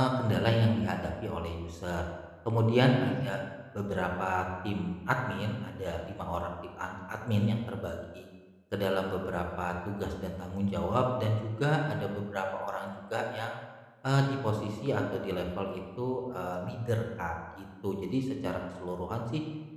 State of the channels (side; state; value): both; identical; correlation 1.00